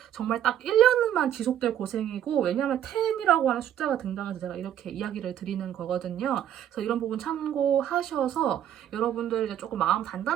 정말 딱 1년만 지속될 고생이고 왜냐하면 10이라고 하는 숫자가 등장해서 제가 이렇게 이야기를 드리는 거거든요. 그래서 이런 부분 참고하셔서 여러분들 이제 조금 마음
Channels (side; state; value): left; quieter; 10.6 dB